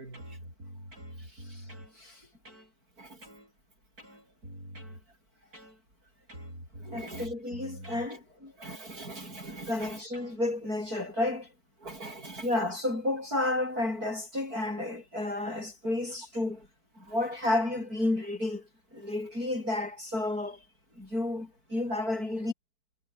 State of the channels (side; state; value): left; late; 4.5 ms